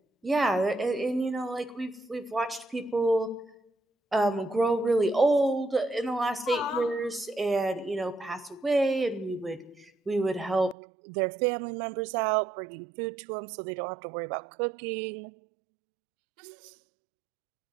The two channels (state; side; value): drops out; left; at 10.8 s